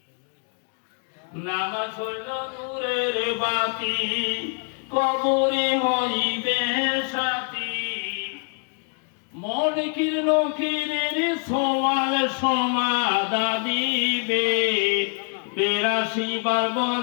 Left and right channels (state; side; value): quieter; right; 39.7 dB